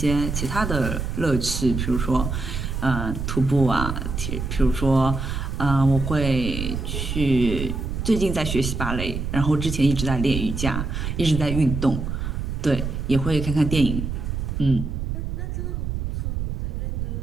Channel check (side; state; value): right; noise; rumble, 3 dB below the sound